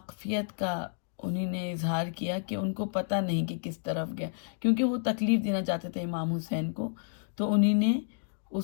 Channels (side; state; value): right; silent; digital silence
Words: کا انہی نے اظہار کیا کہ ان کو پتہ نہیں کہ کس طرف گیا، کیونکہ وہ تکلیف دینا چاہتے تھے امام حسین کو. تو انہی نے